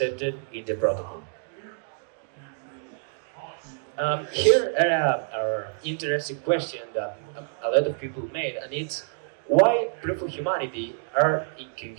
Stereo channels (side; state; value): left; silent; digital silence